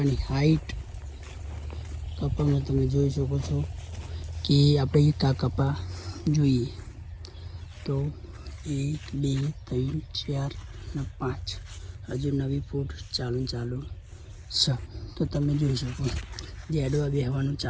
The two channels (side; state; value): both; identical; correlation 1.00